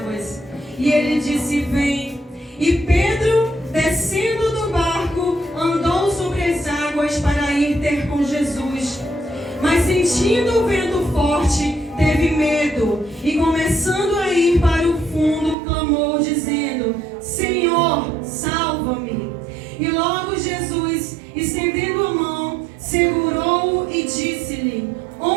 E ele disse: vem. E Pedro, descendo do barco, andou sobre as águas para ir ter com Jesus. Mas sentindo o vento forte, teve medo, e começando a ir para o fundo, clamou dizendo: Senhor, salva-me. E logo Jesus, estendendo a mão, segurou-o e disse-lhe:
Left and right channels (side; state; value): left; drops out; at 15.6 s